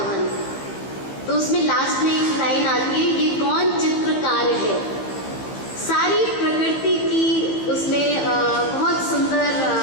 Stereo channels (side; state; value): right; late; 15 ms